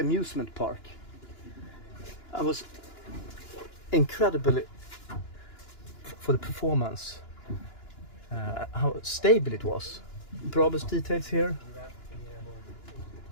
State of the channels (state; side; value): late; right; 2.9 ms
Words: park. I was incredibly for the performance, how stable it was. Brabus details here,